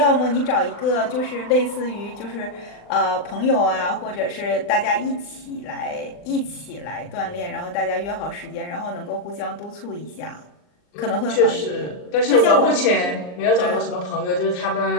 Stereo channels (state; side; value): late; right; 39 ms